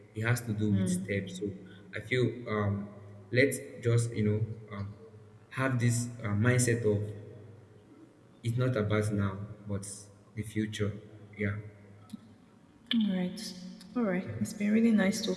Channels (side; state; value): both; identical; correlation 1.00